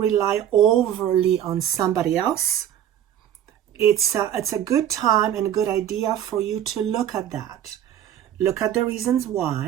rely overly on somebody else, it's a good time and a good idea for you to look at that. Look at the reasons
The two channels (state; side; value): quieter; left; 10.6 dB